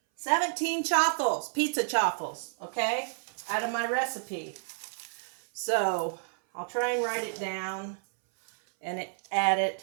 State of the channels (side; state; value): left; silent; 58 dB below the other